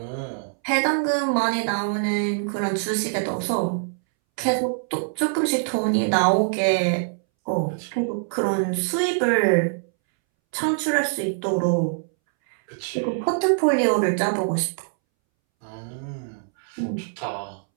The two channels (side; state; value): left; silent; 63 dB below the other